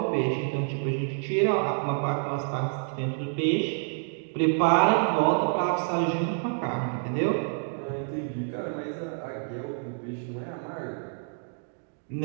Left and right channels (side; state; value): left; silent; 59 dB below the other